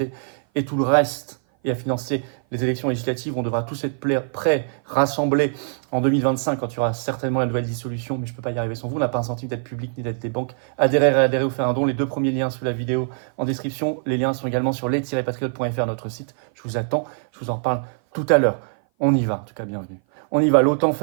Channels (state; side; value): silent; left; 57 dB below the other